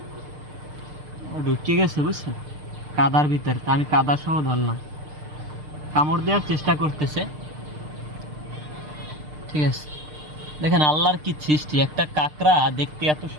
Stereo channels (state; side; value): late; left; 6.6 ms